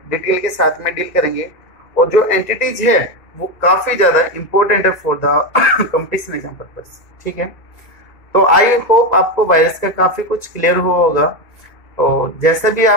डिटेल के साथ में डील करेंगे, और जो एंटिटीज है वो काफी ज्यादा इंपॉर्टेंट है for the competition exam purpose, ठीक है। तो आई होप आपको वायरस का काफी कुछ क्लियर हुआ होगा। तो जैसा भी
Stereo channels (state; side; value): late; right; 2.3 ms